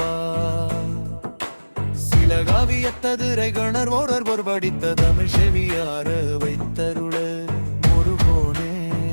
சில காவியத்ததுரை கணர் ஓரர் பொற்படித்த தமிழ் செவியார வைத்தருள முருகோனே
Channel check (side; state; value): both; inverted; correlation -1.00